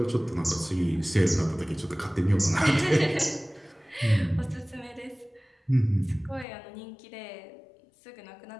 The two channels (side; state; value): right; drops out; at 6.5 s